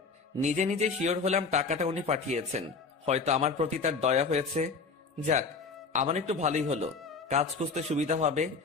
নিজে নিজে শিওর হলাম টাকাটা উনি পাঠিয়েছেন। হয়তো আমার প্রতি তার দয়া হয়েছে। যাক, আমার একটু ভালোই হলো, কাজ খুঁজতে সুবিধা হবে।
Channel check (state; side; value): quieter; right; 4.6 dB